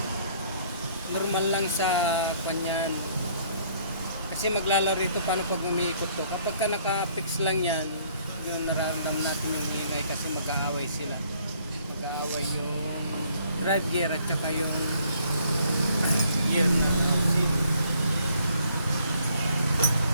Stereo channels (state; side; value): inverted; both; correlation -0.63